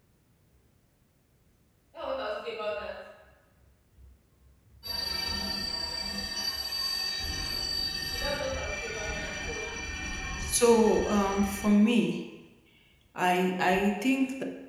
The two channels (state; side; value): identical; both; correlation 1.00